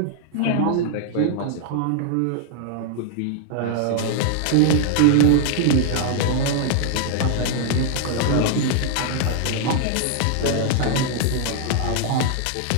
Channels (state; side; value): different; both; correlation -0.01